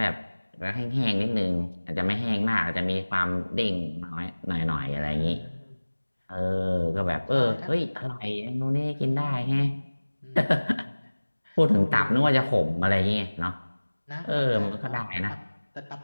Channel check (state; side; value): inverted; both; correlation -1.00